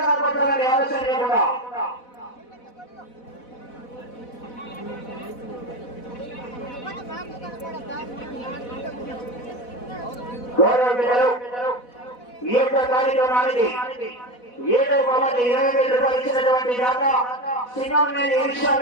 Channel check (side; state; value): right; late; 4.1 ms